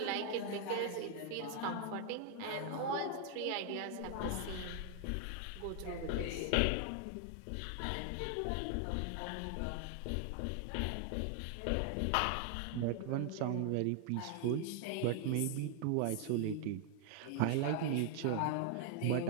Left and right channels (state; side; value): different; both; correlation 0.00